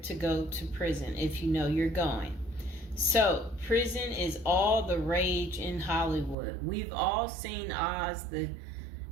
go to prison if you know you're going. So, prison is all the rage in Hollywood. We've all seen Oz, the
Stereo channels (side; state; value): left; drops out; at 6.4 s